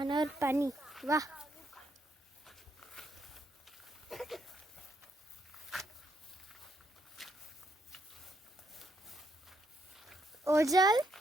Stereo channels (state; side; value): normal; both; correlation 0.75